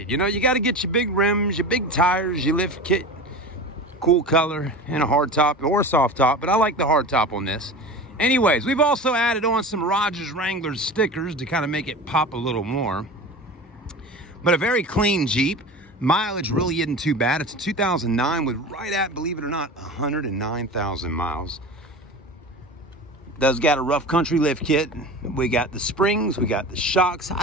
You know, you got to get your big rims, your big tires, your lift kit, cool color, and a hard top or a soft top. But I like the hard top on this. Anyways, we've also added on some Rodgers Wranglers stickers to kind of make it pop a little more. But a very clean Jeep. Mileage really isn't too bad. It's a 2009 with right at, believe it or not, 109,000 miles. Does got a rough country lift kit. We got the springs, we got the shocks.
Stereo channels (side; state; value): both; normal; correlation 0.32